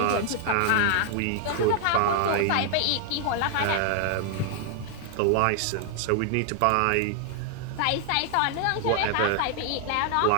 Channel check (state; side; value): different; both; correlation 0.00